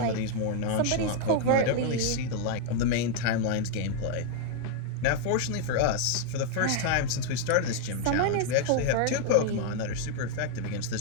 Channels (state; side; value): different; both; correlation 0.00